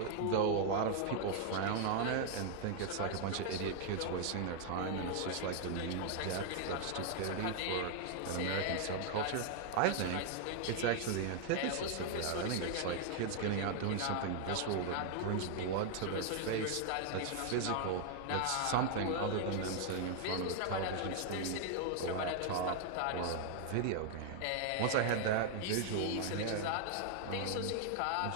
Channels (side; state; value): both; different; correlation 0.00